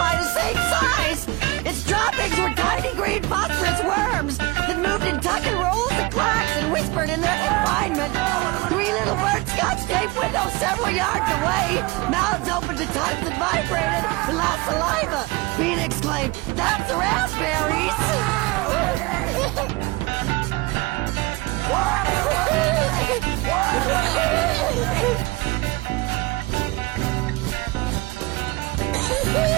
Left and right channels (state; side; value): quieter; left; 23.0 dB